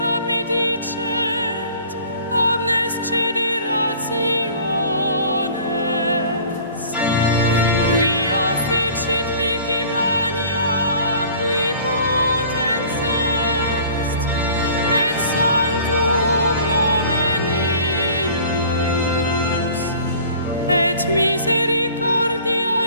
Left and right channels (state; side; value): inverted; both; correlation -0.48